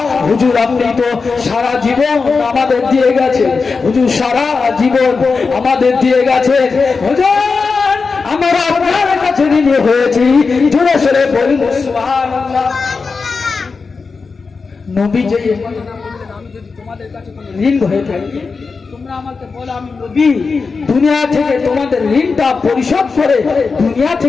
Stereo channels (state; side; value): quieter; right; 4.7 dB